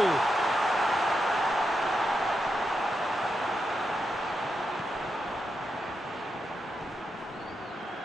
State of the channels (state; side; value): normal; both; correlation 0.85